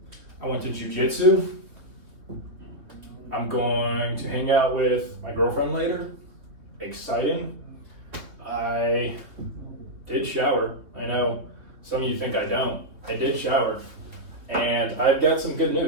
I went to jiu-jitsu. I'm going to hang out with my girlfriend later. Exciting. I did shower. I know some of you think I don't. I did shower. And I've got some good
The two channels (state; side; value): late; left; 3.4 ms